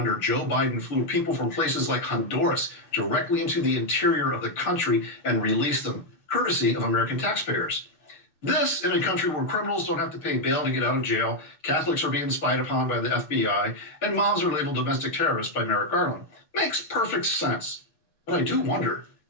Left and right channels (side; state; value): right; late; 6.9 ms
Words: Joe Biden flew people from places like Honduras directly into the interior of the country and released them, courtesy of American taxpayers. This in a country where criminals don't have to pay bail to get out of jail, Catholics are being spied upon by the FBI, and moms are labeled domestic terrorists by Merrick Garland. Makes perfect sense. But I do wonder,